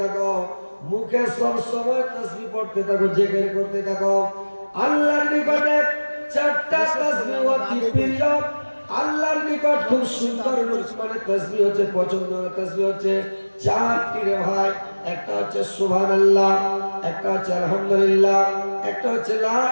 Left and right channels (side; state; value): both; inverted; correlation -1.00